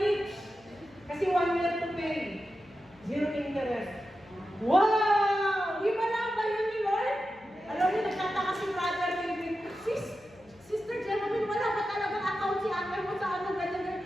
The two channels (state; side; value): noise; left; hum, 28 dB below the sound